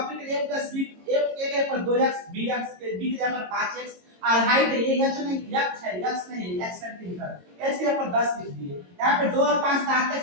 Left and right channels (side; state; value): left; late; 22 ms